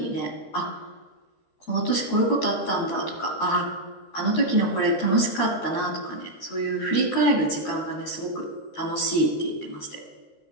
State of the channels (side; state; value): right; late; 13 ms